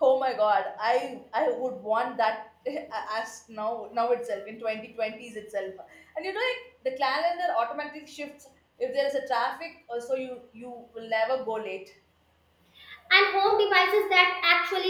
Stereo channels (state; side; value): identical; both; correlation 1.00